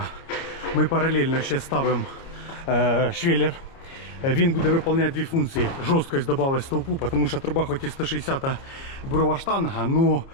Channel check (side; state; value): right; late; 29 ms